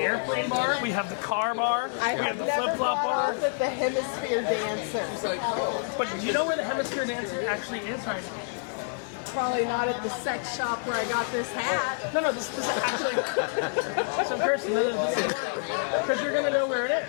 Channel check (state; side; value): silent; right; 60 dB below the other